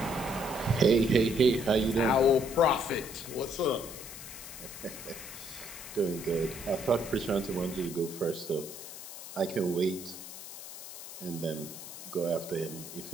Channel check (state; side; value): noise; left; hiss, 12 dB below the sound